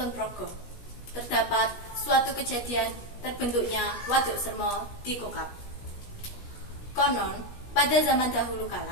Progo, terdapat suatu kejadian terbentuknya Waduk Semo di Kokap. Konon, pada zaman dahulu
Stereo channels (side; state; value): right; late; 17 ms